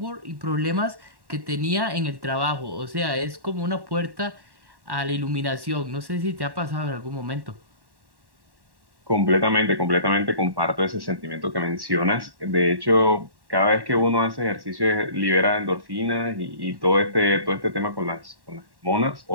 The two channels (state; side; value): late; left; 1.1 ms